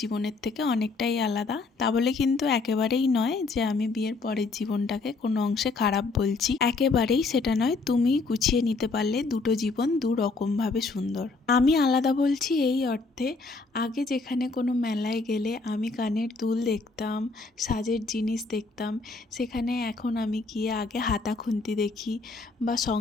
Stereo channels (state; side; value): quieter; right; 3.9 dB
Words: থেকে অনেকটাই আলাদা। তা বলে কিন্তু একেবারেই নয় যে আমি বিয়ের পরের জীবনটাকে কোনো অংশে খারাপ বলছি, একেবারেই সেটা নয়। তুমি গুছিয়ে নিতে পারলে দুটো জীবন দু রকমভাবে সুন্দর। আমি আলাদা বলছি এই অর্থে, আগে যেখানে কোনো মেলায় গেলে আমি কানের দুল দেখতাম, সাজের জিনিস দেখতাম, সেখানে এখন আমি গিয়ে আগে হাতা খুন্তি দেখি বা